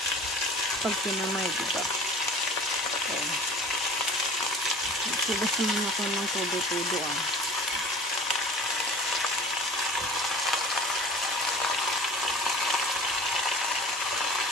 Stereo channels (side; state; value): both; normal; correlation 0.43